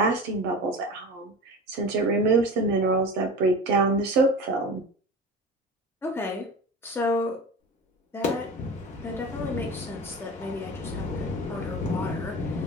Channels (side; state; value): both; normal; correlation 0.32